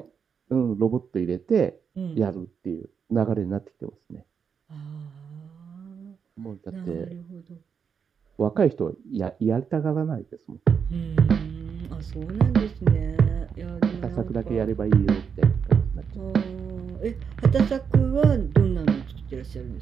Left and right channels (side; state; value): left; quieter; 6.7 dB